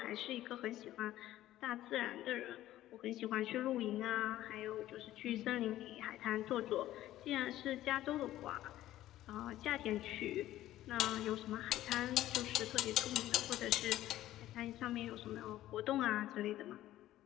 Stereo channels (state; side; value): quieter; right; 14.2 dB